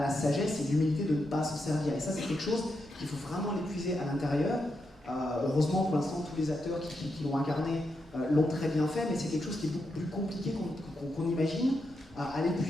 sagesse et l'humilité de ne pas s'en servir. Et ça, c'est quelque chose qu'il faut vraiment l'épuiser à l'intérieur. Heureusement, pour l'instant, tous les acteurs qui l'ont incarné l'ont très bien fait, mais c'est quelque chose qui est beaucoup plus compliqué qu'on imagine à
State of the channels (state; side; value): normal; both; correlation 0.84